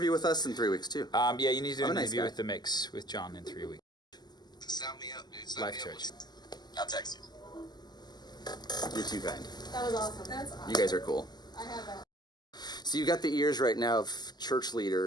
with us in 3 weeks too. Yeah, you need to do I'm an a nice interview guy. with the mix with John in 3 weeks. Sound me up, dude. Sound Life me up. Church. I'll text you. You're too kind. That was awesome. That's awesome. You guys are cool. I have that. So you've got the ears right now of church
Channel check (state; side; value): late; right; 0.20 ms